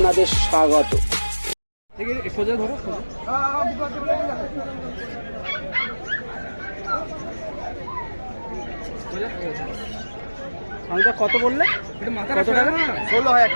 স্বাগত। সোজা ধরো, সোজা। কত বললে? কত টাকা? 16,000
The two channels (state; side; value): inverted; both; correlation -1.00